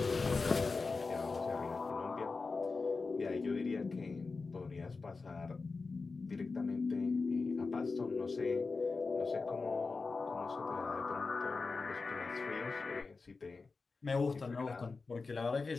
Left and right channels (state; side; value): quieter; right; 4.2 dB